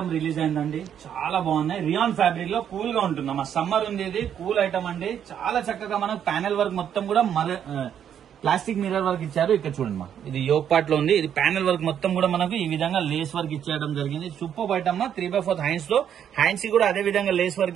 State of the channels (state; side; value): quieter; left; 9.1 dB